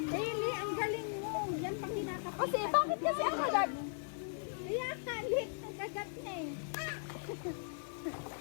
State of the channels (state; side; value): silent; right; digital silence